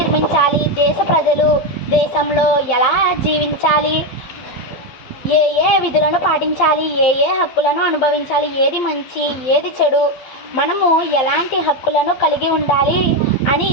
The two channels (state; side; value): late; right; 12 ms